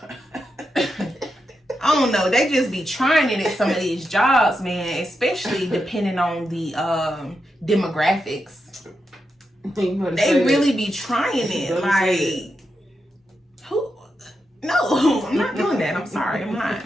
I don't know. They just be trying it at some of these jobs, man. Especially depending on the demographics. They really be trying it. Like, who? No, I'm not doing that. I'm sorry.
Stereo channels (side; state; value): both; normal; correlation 0.86